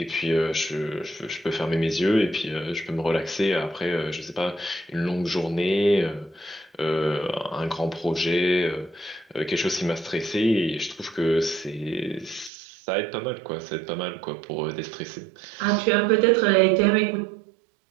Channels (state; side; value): drops out; left; at 12.5 s